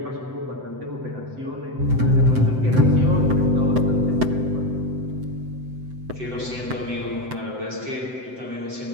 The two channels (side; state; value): left; late; 7.8 ms